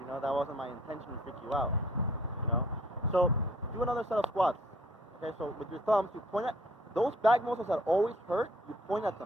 know, that wasn't my intention to freak you out. You know? So do another set of squats. Okay, so with your thumbs, you point at those back muscles that always hurt, you point at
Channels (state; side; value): normal; both; correlation 0.59